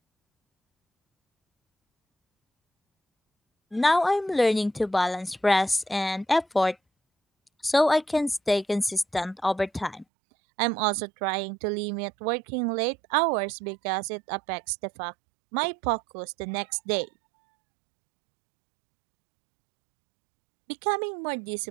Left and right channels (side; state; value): left; drops out; at 10.1 s